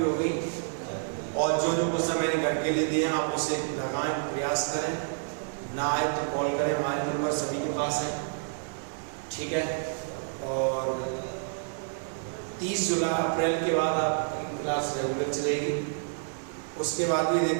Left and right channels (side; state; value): left; silent; digital silence